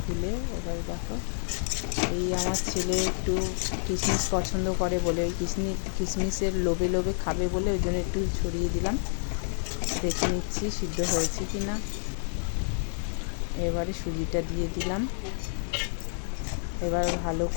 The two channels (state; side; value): silent; right; digital silence